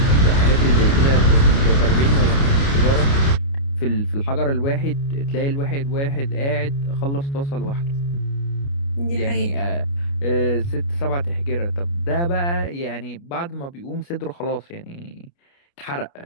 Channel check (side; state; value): right; late; 29 ms